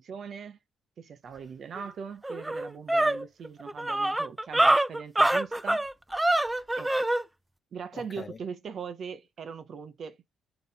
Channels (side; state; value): both; normal; correlation 0.98